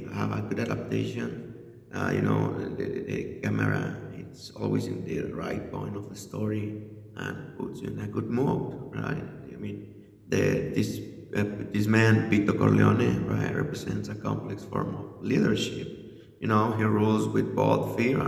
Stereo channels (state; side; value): identical; both; correlation 1.00